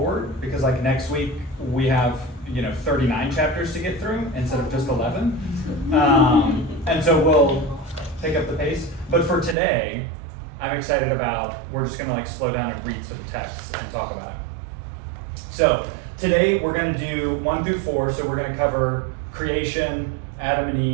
because like next week we have 39 chapters to get through instead of just 11, and so we'll pick up the pace. But for today, I'm excited about, we're just going to like slow down and read some texts and talk about it. So today we're going to do 1 through 4. So we're going to cover creation, Adam and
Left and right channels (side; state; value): left; drops out; at 9.6 s